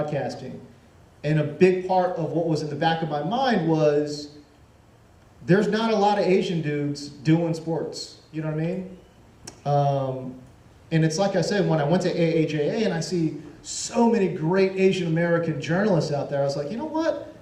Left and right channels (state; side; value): identical; both; correlation 1.00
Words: And a big part of what was in the back of my mind was, there's not a lot of Asian dudes doing sports. You know what I mean? And it's like I said, when I went to AAJA and I see so many great Asian American journalists out there, I was like, you know what?